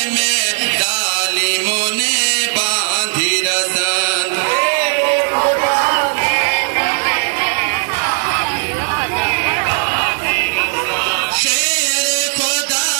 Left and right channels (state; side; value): silent; left; 59 dB below the other